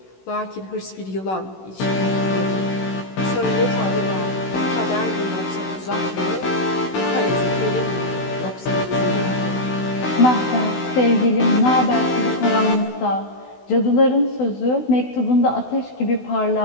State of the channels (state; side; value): late; right; 16 ms